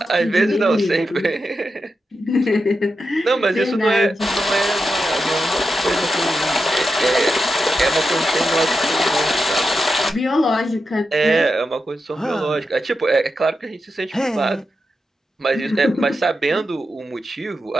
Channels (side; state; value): both; normal; correlation 0.88